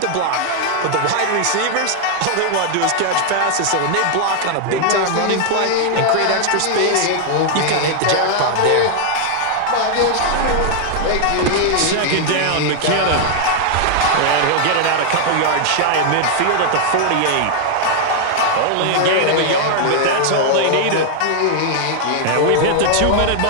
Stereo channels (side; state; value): both; different; correlation 0.00